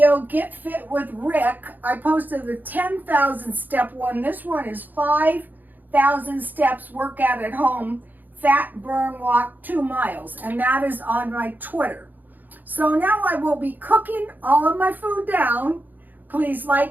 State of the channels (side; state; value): left; late; 0.085 ms